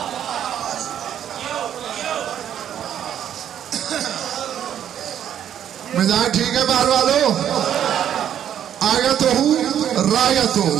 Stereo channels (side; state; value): left; quieter; 10.0 dB